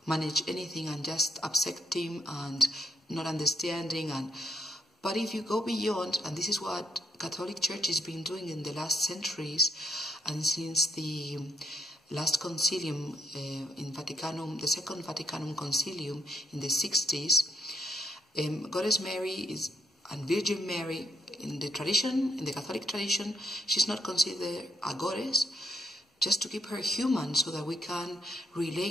manage anything and just accepting and not understanding. But if you go beyond, and this is what Catholic Church has been doing in the last centuries, and since the last concilium in Vaticanum, the Second Vaticanum Concilium in the 60s, Goddess Mary and Virgin Mary, in the tradition, in the Catholic tradition, she's not considered a goddess, just to keep her human so that we can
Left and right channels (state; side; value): normal; both; correlation 0.73